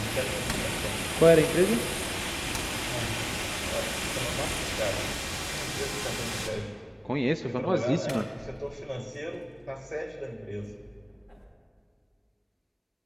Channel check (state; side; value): identical; both; correlation 1.00